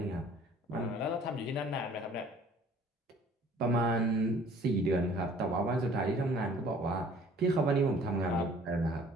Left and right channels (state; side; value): normal; both; correlation 0.53